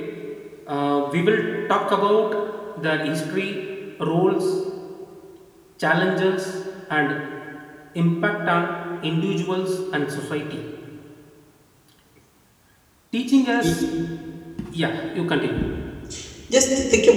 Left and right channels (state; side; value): identical; both; correlation 1.00